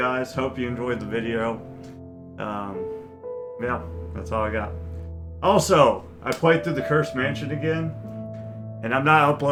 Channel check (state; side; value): identical; both; correlation 1.00